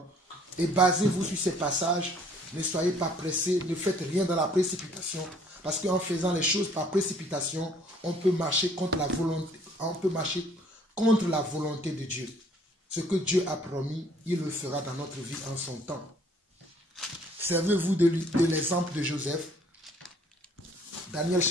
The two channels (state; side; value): normal; both; correlation 0.59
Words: Et basez-vous sur ces passages. Ne soyez pas pressés, ne faites rien dans la précipitation. Parce qu'en faisant les choses par précipitation, on peut marcher contre la volonté de Dieu. Ce que Dieu a promis, il le fera dans notre vie en son temps. Servez-vous de l'exemple de Joseph. Daniel